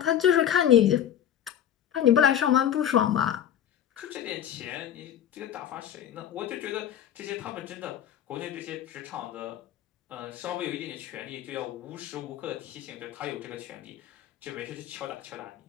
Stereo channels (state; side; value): quieter; right; 10.2 dB